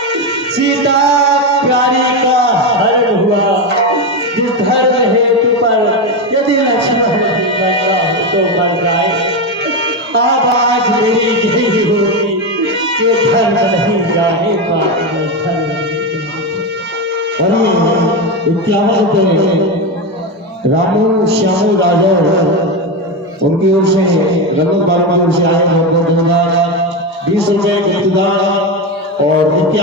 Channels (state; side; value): normal; both; correlation 0.13